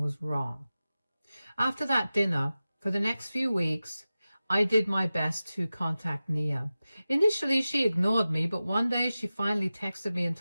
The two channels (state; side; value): inverted; both; correlation -0.95